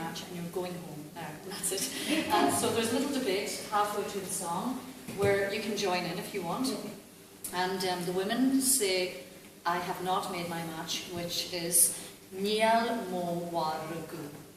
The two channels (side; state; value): both; identical; correlation 1.00